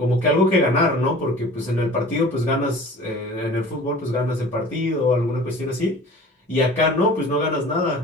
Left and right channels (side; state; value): both; normal; correlation 0.43